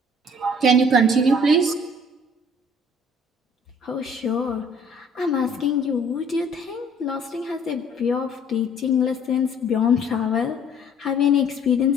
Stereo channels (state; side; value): normal; both; correlation 0.55